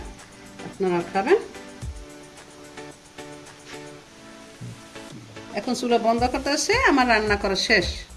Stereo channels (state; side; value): identical; both; correlation 1.00